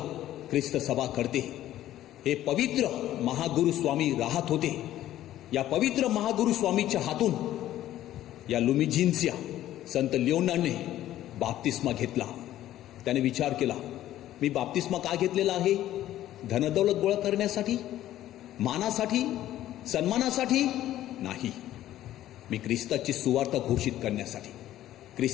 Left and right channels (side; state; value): right; quieter; 13.3 dB